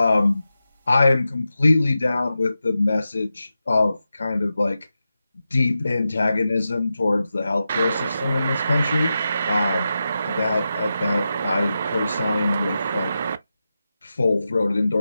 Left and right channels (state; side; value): inverted; both; correlation -0.90